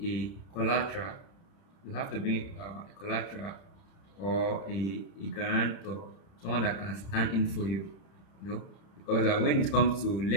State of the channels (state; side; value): late; right; 31 ms